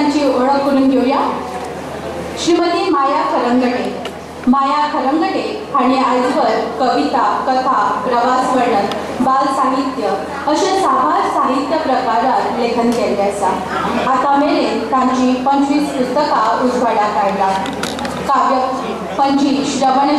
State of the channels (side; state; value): both; identical; correlation 1.00